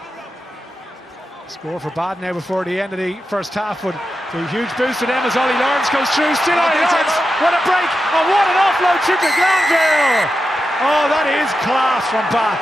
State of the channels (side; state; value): both; normal; correlation 0.89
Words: Score for Bath now before the end of the first half, but a huge boost to them as Ollie Lawrence goes through. Still Ollie Lawrence. What a break, and what an offload to Glanville. Oh, that is class from Bath.